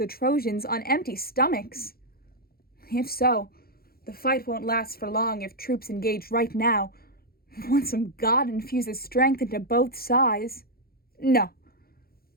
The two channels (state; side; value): late; right; 0.44 ms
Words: Trojans on empty stomachs. If so, the fight won't last for long if troops engage right now, once some god infuses strength into both sides. No.